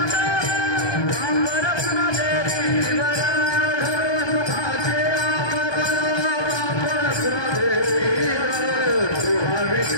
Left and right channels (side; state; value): right; late; 1.2 ms